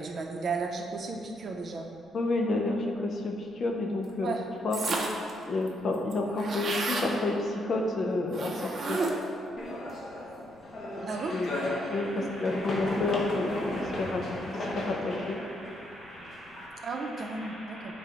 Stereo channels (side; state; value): right; noise; rumble, 30 dB below the sound